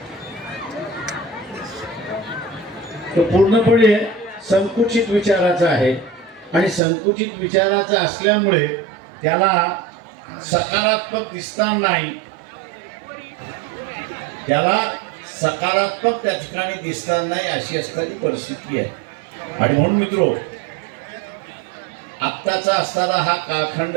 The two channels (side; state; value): left; drops out; at 6.8 s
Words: तो पूर्णपणे संकुचित विचाराचा आहे. आणि संकुचित विचाराचा असल्यामुळे त्याला सकारात्मक दिसणार नाही, त्याला सकारात्मक त्या ठिकाणी दिसणार नाही, अशी असणारी परिस्थिती आहे. आणि म्हणून मित्रो, आत्ताचा असणारा हा कालखंड